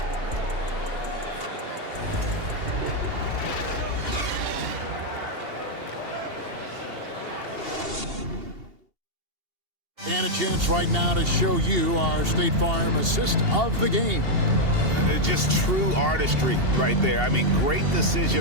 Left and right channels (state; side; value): late; left; 2.8 ms